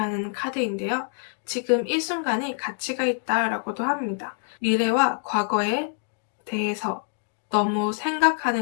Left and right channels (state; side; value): silent; right; 61 dB below the other